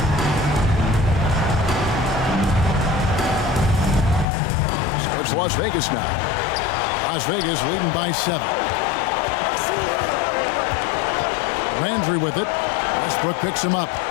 Starts Las Vegas now. Las Vegas leading by 7. Landry with it. Westbrook picks him up.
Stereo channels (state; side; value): drops out; right; at 4.2 s